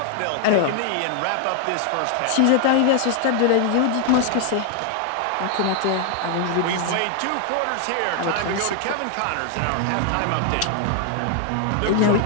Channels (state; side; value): different; both; correlation 0.00